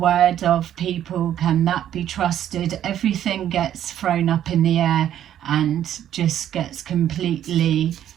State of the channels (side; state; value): left; quieter; 10.9 dB